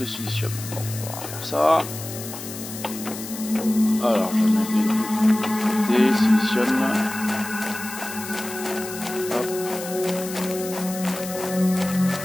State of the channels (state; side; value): noise; left; hiss, 10 dB below the sound